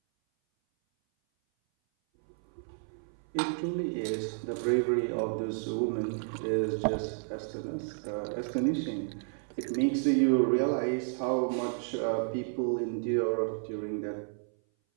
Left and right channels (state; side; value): silent; left; 57 dB below the other